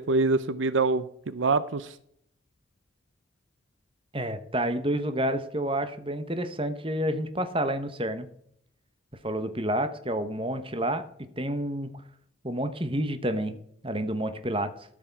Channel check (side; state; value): both; normal; correlation 0.25